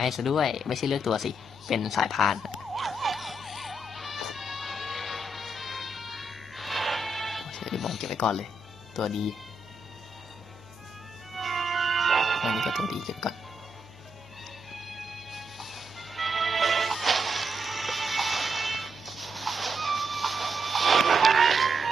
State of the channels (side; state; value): right; noise; hum, 27 dB below the sound